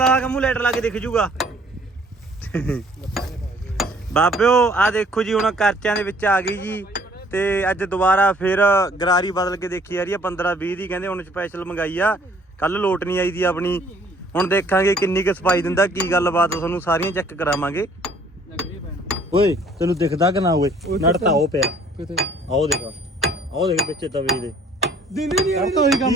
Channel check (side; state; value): both; normal; correlation 0.58